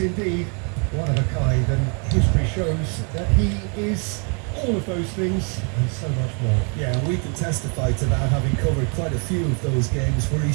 indeed one of a kind, and history shows that he is all of those things and so much more. Yeah, we can testify to that, having covered quite a few of those games where he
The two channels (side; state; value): left; quieter; 37.4 dB